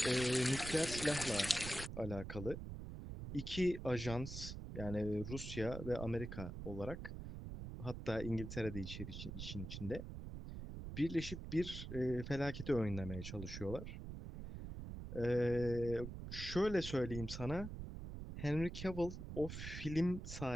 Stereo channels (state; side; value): noise; right; rumble, 8 dB below the sound